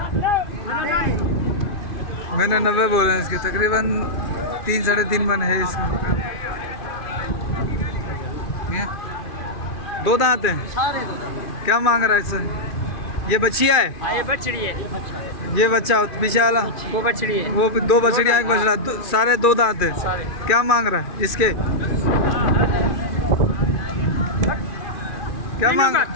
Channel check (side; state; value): right; late; 2.4 ms